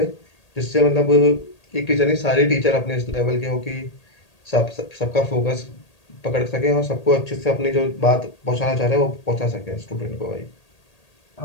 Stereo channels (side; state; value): right; late; 1.8 ms